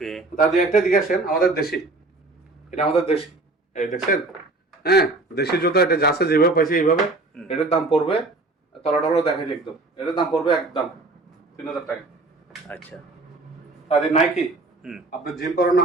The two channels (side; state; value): left; quieter; 3.2 dB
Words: তাদের একটা দিকে আসেন, আমাদের দেশি, এটা আমাদের দেশি, এই দেখছেন, হ্যাঁ দেশি জুতা, এটা যা আছে যেভাবে পাইছে এইভাবে, এটার দাম পড়বে, তলাটা দেখাই একদম, এটার দাম পড়বে একদম 3000 টাকা। আচ্ছা তাদের নাইকি আপনি জিম করানো